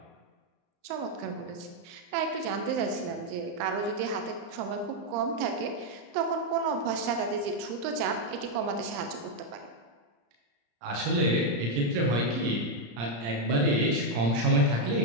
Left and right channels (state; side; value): late; left; 34 ms